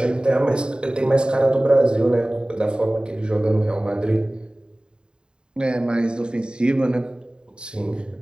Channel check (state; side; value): late; left; 0.049 ms